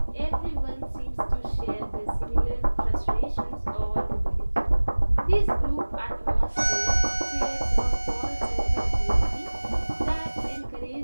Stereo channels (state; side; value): inverted; both; correlation -1.00